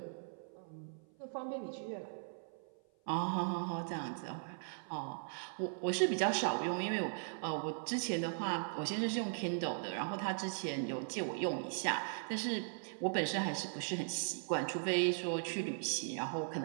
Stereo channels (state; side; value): silent; left; 52 dB below the other